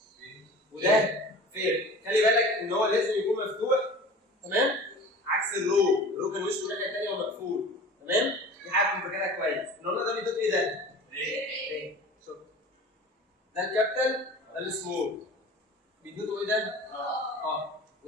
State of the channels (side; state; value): both; normal; correlation 0.40